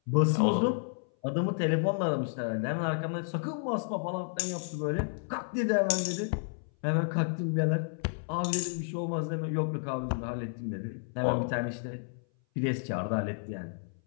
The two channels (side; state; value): right; silent; 57 dB below the other